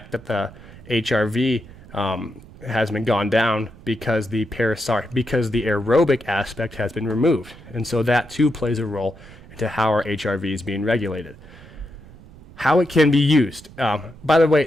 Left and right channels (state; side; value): noise; right; rumble, 20 dB below the sound